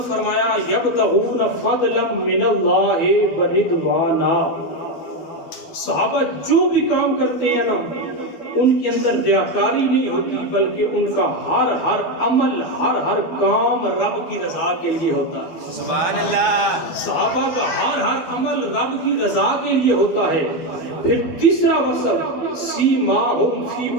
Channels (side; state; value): right; late; 12 ms